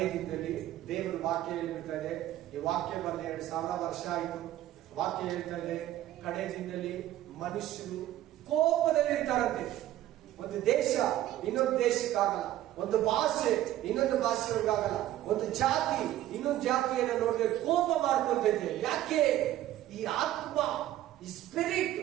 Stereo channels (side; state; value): left; quieter; 13.6 dB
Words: ದಿನದಲ್ಲಿ ದೇವರ ವಾಕ್ಯ ಹೇಳ್ಬಿಡ್ತಾರೆ. ಈ ವಾಕ್ಯ ಬಂದ 2000 ವರ್ಷ ಆಯಿತು. ವಾಕ್ಯ ಹೇಳ್ತಾರೆ, ಕಡೆ ದಿನದಲ್ಲಿ ಮನುಷ್ಯರು ಕೋಪದಲ್ಲಿ ಇರ್ತಾರಂತೆ. ಒಂದು ದೇಶ ಇನ್ನೊಂದು ದೇಶಕ್ಕಾಗಲ್ಲ, ಒಂದು ಭಾಷೆ ಇನ್ನೊಂದು ಭಾಷೆಗಳಿಗಾಗಲ್ಲ, ಒಂದು ಜಾತಿ ಇನ್ನೊಂದು ಜಾತಿಯನ್ನು ನೋಡಿದ್ರೆ ಕೋಪ ಮಾಡ್ಕೊಂತೈತೆ. ಯಾಕೆ? ಈ ಆತ್ಮ, ಈ ಸ್ಪಿರಿಟ್,